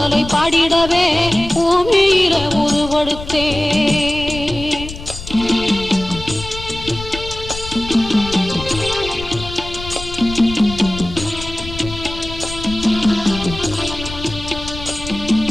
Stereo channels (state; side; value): noise; left; rumble, 11 dB below the sound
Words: பாடிடவே பூமியில உருவெடுத்தே